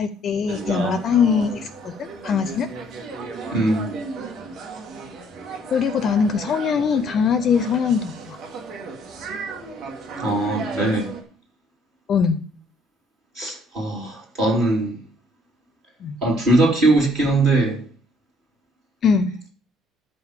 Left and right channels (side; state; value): both; normal; correlation 0.63